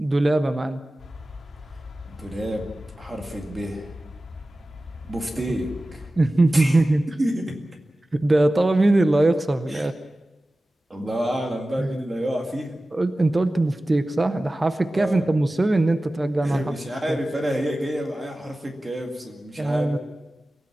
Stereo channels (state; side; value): normal; both; correlation 0.96